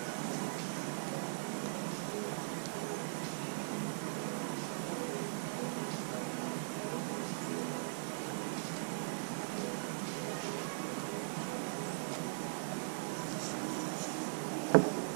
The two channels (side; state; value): left; silent; 51 dB below the other